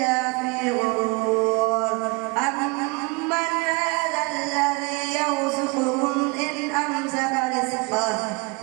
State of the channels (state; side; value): quieter; left; 28.2 dB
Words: في غرور أمن هذا الذي يرزقكم إن أمسك رزقه